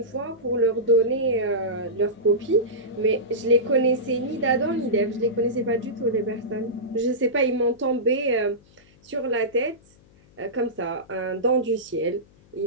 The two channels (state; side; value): noise; left; hum, 29 dB below the sound